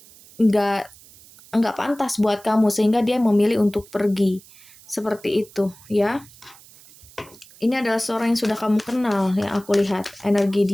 nggak nggak pantas buat kamu, sehingga dia memilih untuk pergi. Seperti itu ya. Ini adalah seorang yang sudah kamu kenal, yang aku lihat. Energi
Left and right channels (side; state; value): right; noise; hiss, 23 dB below the sound